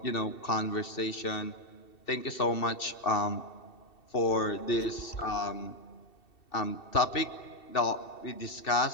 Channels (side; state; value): right; late; 2.7 ms